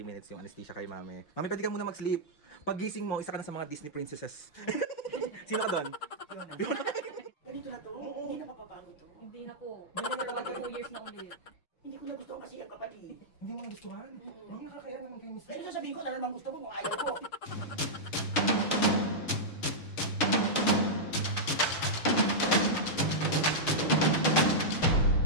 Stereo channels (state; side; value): late; right; 6.6 ms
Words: minutes yung anesthesia kay Mami. Mami, pwede ka muna mag-sleep. Pag gising mo, isa ka na sa mga Disney princesses. Sino ka doon? Ganito na to? Hindi na mapapagod to? Hindi na po. Hindi na po 2 years na ulit. Hindi ko na gusto kasi ang kapatid. Hindi mo nagustuhan? Mami, nakakaya naman kayo, Miss. Pero sasabihin ko na naman gusto mo kung ayaw ko.